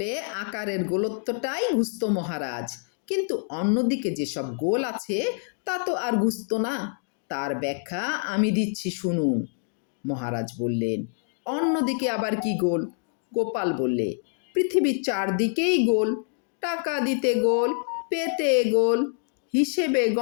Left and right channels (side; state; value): right; silent; 56 dB below the other